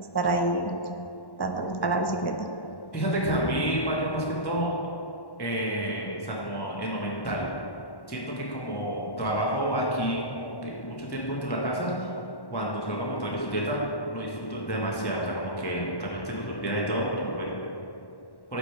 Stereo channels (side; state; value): right; late; 1.1 ms